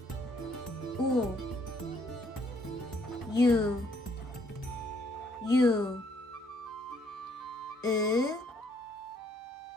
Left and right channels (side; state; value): both; normal; correlation 0.67